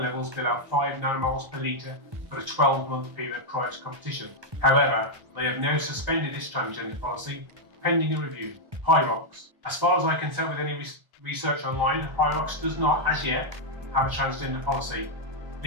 below 5 nanomoles per litre for a 12-month period prior to competition. However, they have now suspended this transgender policy pending a review. Hyrox. As far as I can tell with any research online, Hyrox does not, as yet, have a transgender policy,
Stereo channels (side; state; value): left; late; 1.3 ms